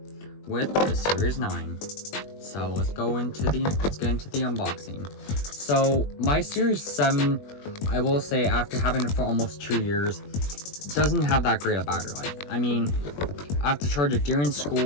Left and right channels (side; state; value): right; late; 21 ms